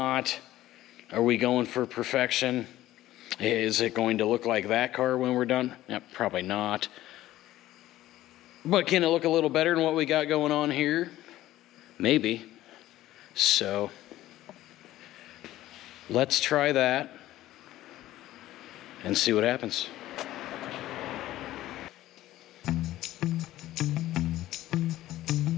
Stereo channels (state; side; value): quieter; right; 14.9 dB